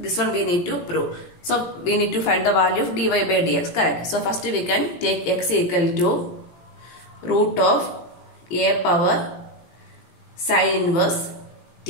this one we need to prove. So we need to find the value of dy by dx, correct? So first we can take x equal to root of a power sin inverse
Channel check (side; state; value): right; late; 17 ms